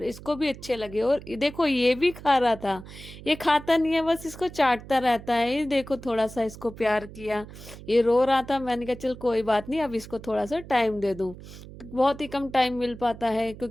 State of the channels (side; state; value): right; noise; hum, 16 dB below the sound